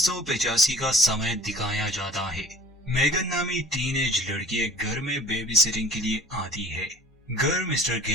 का समय दिखाया जाता है। मेगन नामी टीनेज लड़की एक घर में बेबी सिटिंग के लिए आती है। घर मिस्टर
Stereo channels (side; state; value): both; normal; correlation 0.46